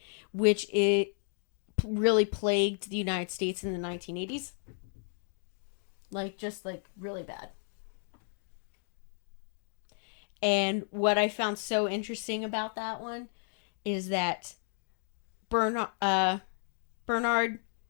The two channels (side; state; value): right; silent; 56 dB below the other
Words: which it really plagued the United States in the 1980s. Just really bad. And what I found so interesting about that one is that Bernard